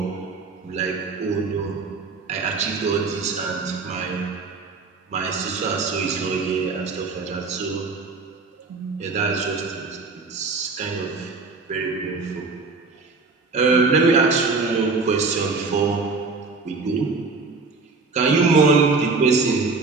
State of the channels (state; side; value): quieter; left; 4.1 dB